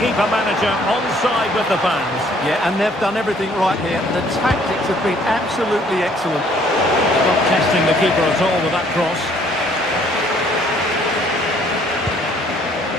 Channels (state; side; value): normal; both; correlation 0.61